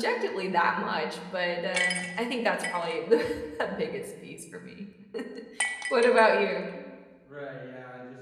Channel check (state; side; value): identical; both; correlation 1.00